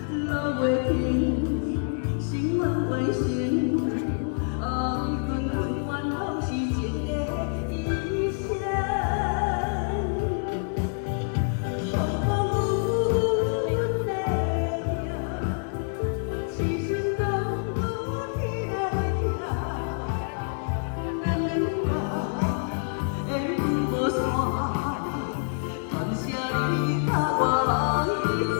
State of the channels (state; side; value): silent; right; 60 dB below the other